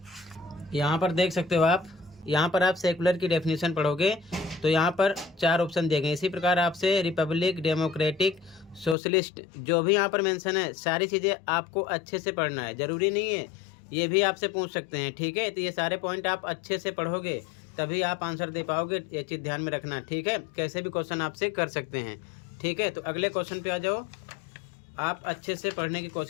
यहाँ पर देख सकते हो आप, यहाँ पर आप सेकुलर की डेफिनेशन पढ़ोगे तो यहाँ पर 4 ऑप्शन दिए गए। इसी प्रकार आपसे रिपब्लिक, डेमोक्रेटिक, सोशलिस्ट, जो भी यहाँ पर मेंशन है, सारी चीज़ें आपको अच्छे से पढ़ना है। ज़रूरी नहीं है, ये भी आपसे पूछ सकते हैं। ठीक है, तो ये सारे पॉइंट आप अच्छे से पढ़ोगे तभी आप आंसर दे पाओगे। ये चीज़ ध्यान में रखना। ठीक है, कैसे भी क्वेश्चन आपसे कर सकते हैं। ठीक है, तो अगले क्वेश्चन पे आ जाओ। आप अच्छे से पढ़ने की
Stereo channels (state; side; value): drops out; right; at 9.0 s